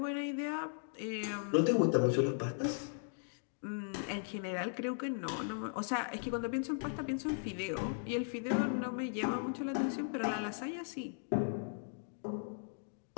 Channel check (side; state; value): right; silent; digital silence